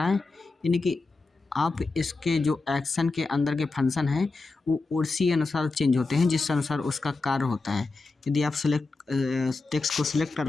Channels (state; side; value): quieter; right; 3.7 dB